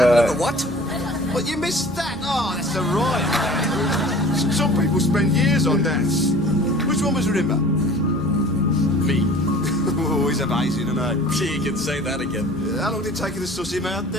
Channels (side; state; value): both; normal; correlation 0.45